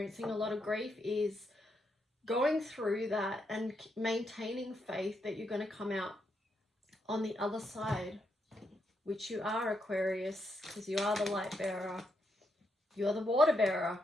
a lot of grief, is going through that and maintaining faith that you're going to come out on the other side, which you are, Aquarius, because you are the light bearer. You are the water bearer,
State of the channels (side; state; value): both; normal; correlation 0.80